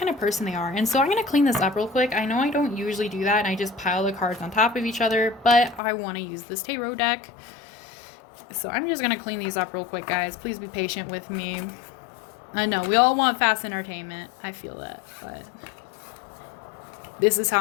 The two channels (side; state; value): right; drops out; at 5.8 s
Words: of person they are. And so I'm going to clean this up real quick. I know I don't usually do that, and I just pile the cards on top of each other, but I want to use this tarot deck. So I'm just going to clean these up real quick, guys. Please be patient with me. I know we all want fast entertainment. I feel that, but this is how